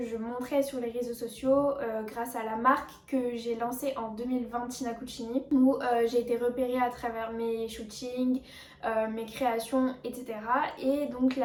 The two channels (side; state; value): both; identical; correlation 1.00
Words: je montrais sur les réseaux sociaux, grâce à la marque que j'ai lancée en 2020, Tina Cucini, où j'ai été repérée à travers mes shootings, mes créations, etc. Et donc